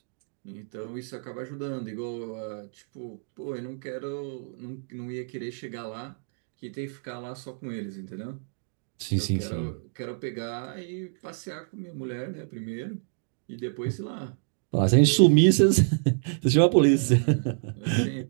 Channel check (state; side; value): silent; left; digital silence